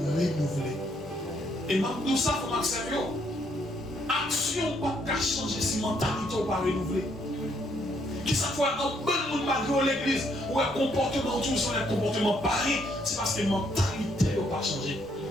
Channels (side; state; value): left; noise; rumble, 25 dB below the sound